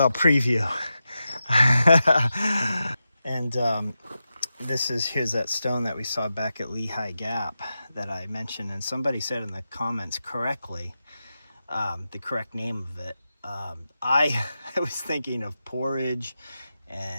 preview. And here's that stone that we saw back at Lehigh Gap that I mentioned. And somebody said in the comments correctly, the correct name of it. I was thinking of porridge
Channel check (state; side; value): inverted; both; correlation -0.90